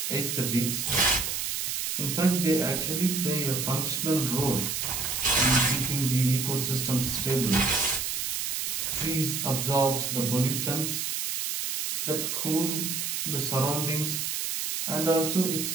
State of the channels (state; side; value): noise; right; hiss, 2 dB below the sound